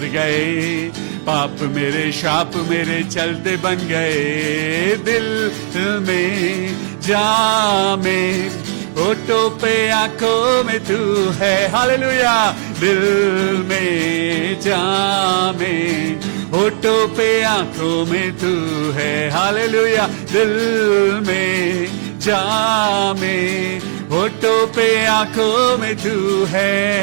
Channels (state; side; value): silent; left; digital silence